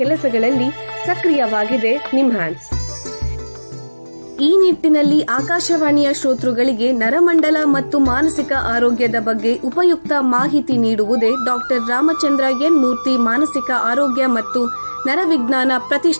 ಕೆಲಸಗಳಲ್ಲಿ ಸಕ್ರಿಯವಾಗಿದೆ ನಿಮ್ಹಾನ್ಸ್. ಈ ನಿಟ್ಟಿನಲ್ಲಿ ಆಕಾಶವಾಣಿಯ ಶ್ರೋತೃಗಳಿಗೆ ನರಮಂಡಲ ಮತ್ತು ಮಾನಸಿಕ ಆರೋಗ್ಯದ ಬಗ್ಗೆ ಉಪಯುಕ್ತ ಮಾಹಿತಿ ನೀಡುವುದೇ ಡಾಕ್ಟರ್ ರಾಮಚಂದ್ರ ಎನ್ ಮೂರ್ತಿ ಮಾನಸಿಕ ಆರೋಗ್ಯ ಮತ್ತು ನರವಿಜ್ಞಾನ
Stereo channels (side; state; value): both; inverted; correlation -1.00